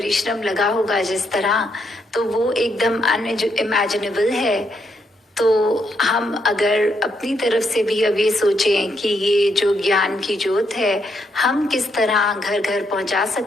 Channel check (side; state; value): both; normal; correlation 0.77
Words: लगा होगा जिस तरह, तो वो एकदम अनइमेजिनेबल है। तो हम अगर अपनी तरफ से भी अब ये सोचें कि ये जो ज्ञान की ज्योत है हम किस तरह घर घर पहुंचा